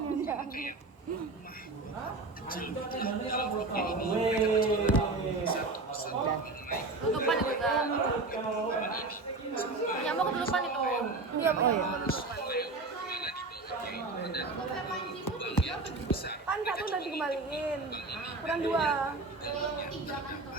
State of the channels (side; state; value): left; quieter; 3.4 dB